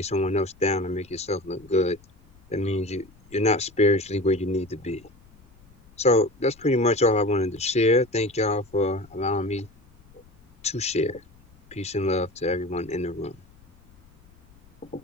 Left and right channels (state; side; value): noise; left; rumble, 28 dB below the sound